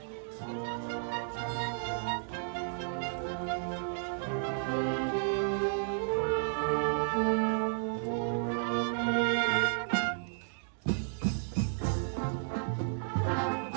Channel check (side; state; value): left; silent; digital silence